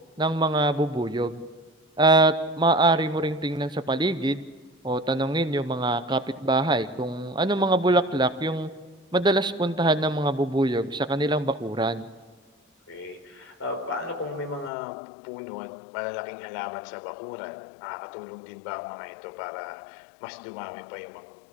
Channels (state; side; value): drops out; right; at 14.7 s